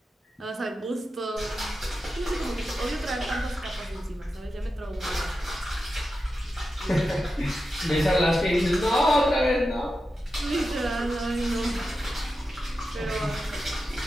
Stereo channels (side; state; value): both; normal; correlation 0.90